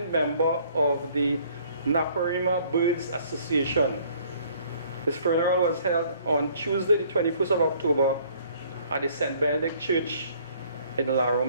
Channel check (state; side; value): inverted; both; correlation -0.58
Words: member of the Naparima Birds Association. His funeral was held on Tuesday, the 21st of October, at the St. Benedict Church in La